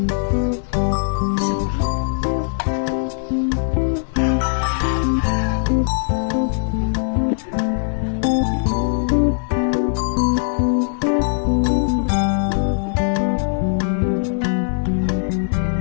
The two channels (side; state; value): right; silent; digital silence